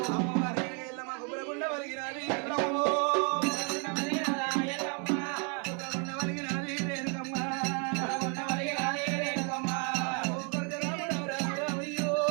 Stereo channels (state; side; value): quieter; left; 37.5 dB